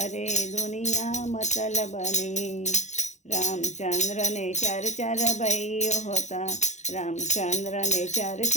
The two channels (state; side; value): late; right; 0.34 ms